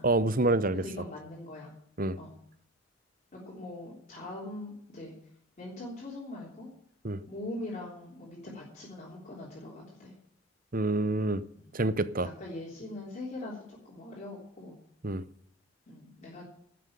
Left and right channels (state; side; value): normal; both; correlation 0.35